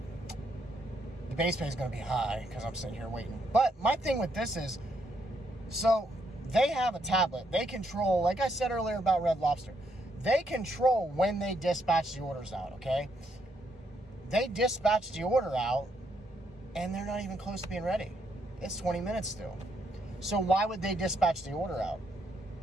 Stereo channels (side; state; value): both; normal; correlation 0.75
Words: the base pay is going to be high because I'm sitting here waiting. But my thing with this is, so they have a tablet. They control, like I said earlier about Red Lobster, they control when they dispatch the orders out, okay? They dispatch the order out, and they're not even close to being ready. It's 20 minutes still. So why would they dispatch the order out?